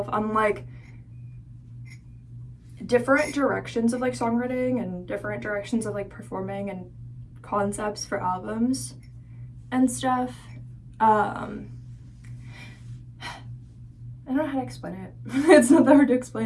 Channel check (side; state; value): both; identical; correlation 1.00